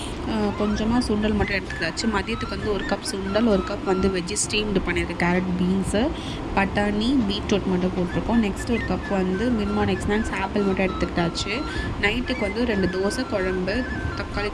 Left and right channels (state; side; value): identical; both; correlation 1.00